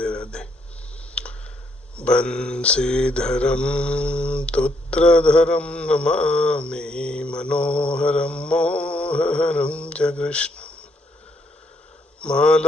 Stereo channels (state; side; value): normal; both; correlation 0.73